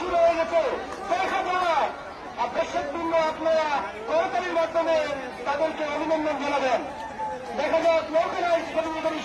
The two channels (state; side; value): identical; both; correlation 1.00